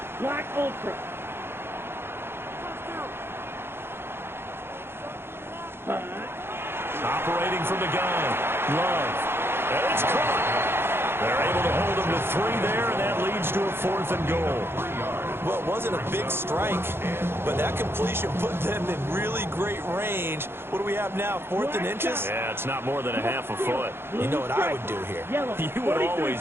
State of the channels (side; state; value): left; late; 0.11 ms